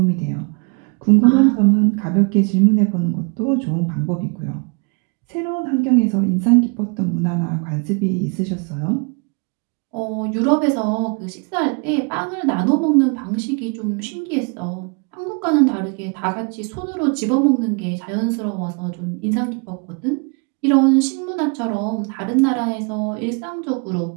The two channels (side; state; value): left; quieter; 34.1 dB